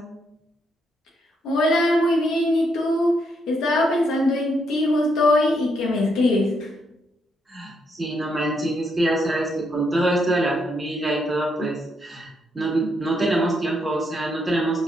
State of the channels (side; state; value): both; normal; correlation 0.77